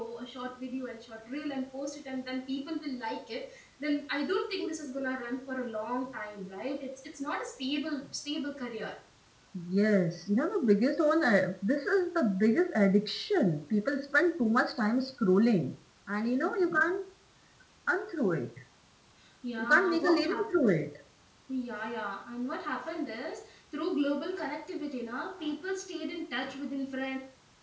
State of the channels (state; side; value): identical; both; correlation 1.00